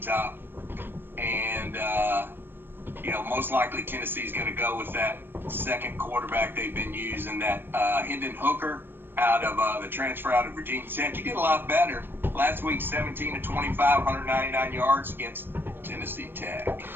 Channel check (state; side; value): late; left; 0.098 ms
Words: Top. And, most likely Tennessee's going to go with that second quarterback they've been using, that Hendon Hooker out of the transfer out of Virginia Tech. He did a lot better last week, 17 to 25, 199 yards against Tennessee Tech.